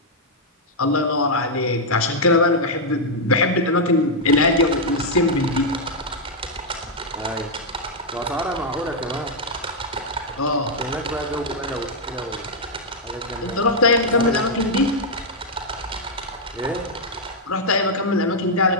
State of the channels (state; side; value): normal; both; correlation -0.03